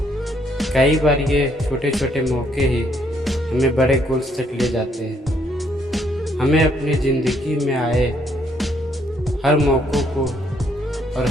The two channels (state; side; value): normal; both; correlation 0.70